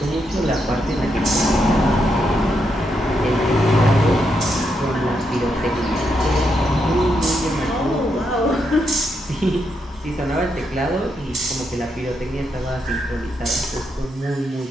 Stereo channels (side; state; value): both; normal; correlation 0.81